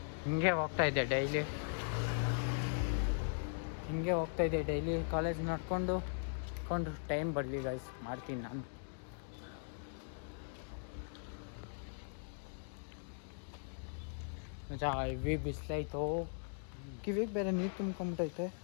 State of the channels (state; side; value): silent; right; digital silence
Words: ಹಿಂಗೆ ಹೋಗ್ತಾಯಿದ್ದೆ ಡೈಲಿ ಕಾಲೇಜ್ ನಡ್ಕೊಂಡು ಟೈಮ್ ಬರಲಿ ಗೈಸ್, ಮಾಡ್ತೀನಿ ನಾನು. ಮಜಾ ಹೆವಿ ಬಿಸಿಲಾಯ್ತು. ಕಿವಿಗೆ ಬೇರೆ ನೀರು ತುಂಬ್ಕೊಂಬಿಟ್ಟೈತೆ.